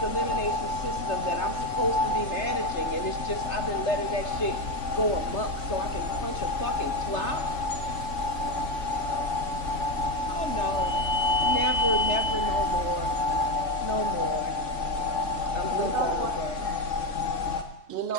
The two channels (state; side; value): late; right; 3.6 ms